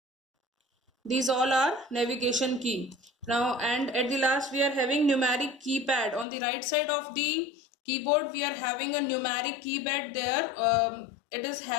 These all are navigation key. Now, and at the last we are having numeric keypad. On the right side of the keyboard we are having a numeric keypad there. It is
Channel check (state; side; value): drops out; right; at 6.2 s